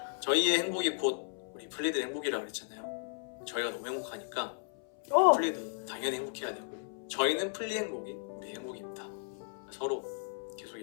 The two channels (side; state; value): right; silent; 55 dB below the other